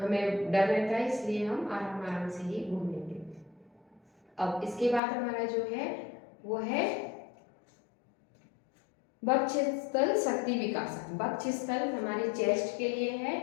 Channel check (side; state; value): right; drops out; at 5.0 s